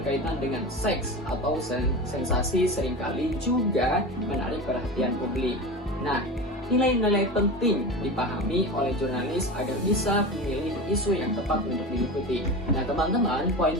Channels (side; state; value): both; normal; correlation 0.27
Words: dengan seks atau sensasi, seringkali juga menarik perhatian publik. Nah, nilai-nilai penting dipahami oleh jurnalis agar bisa memilih isu yang tepat untuk diikuti. Nah teman-teman, poin